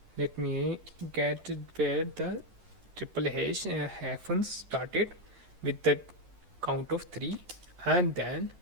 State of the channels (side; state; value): left; late; 11 ms